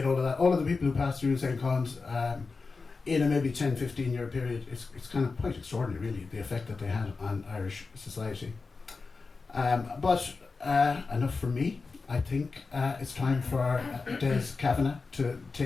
all of that. All of the people who passed through St. Colum's in a maybe 10-15 year period, it's kind of quite extraordinary really, the effect that they had on Irish society. But enough from me. I think it's time for Des Kavanagh to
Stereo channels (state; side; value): quieter; right; 4.3 dB